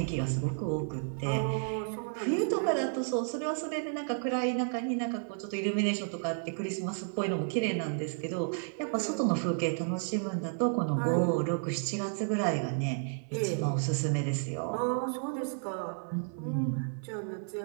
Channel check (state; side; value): silent; left; 56 dB below the other